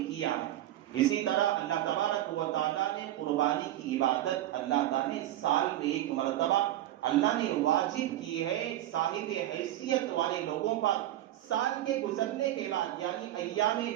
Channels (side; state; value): left; quieter; 13.6 dB